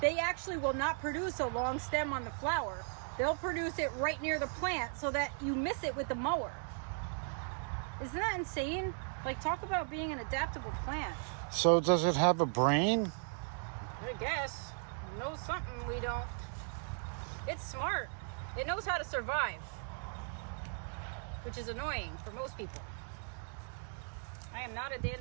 actually will not produce a long stem on the flower. They'll produce it right near the plant so that you miss it with the mower. Isn't that insane? Like, talk about being an adaptable plant. So does it have a brain? I guess. It knows something we don't. It's smart. It knows how to survive, which is annoying for most people. I am not a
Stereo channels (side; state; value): left; silent; 53 dB below the other